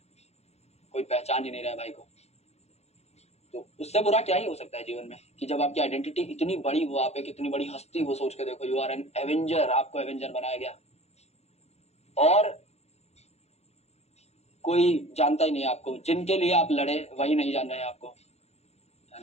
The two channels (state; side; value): late; right; 0.31 ms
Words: कोई पहचान ही नहीं रहा भाई को। तो उससे बुरा क्या ही हो सकता है जीवन में, कि जब आपकी आइडेंटिटी इतनी बड़ी हो, आप एक इतनी बड़ी हस्ती हो, सोच के देखो, यू आर एन एवेंजर, आपको एवेंजर बनाया गया और कोई जानता ही नहीं आपको, जिनके लिए आप लड़े वही नहीं जान रहे हैं आपको, है